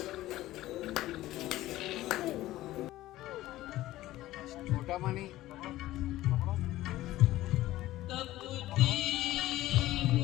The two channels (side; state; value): right; quieter; 15.8 dB